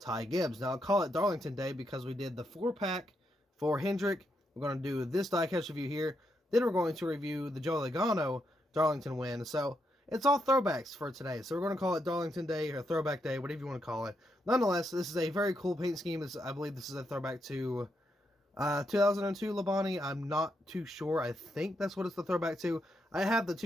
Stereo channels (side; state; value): both; normal; correlation 0.81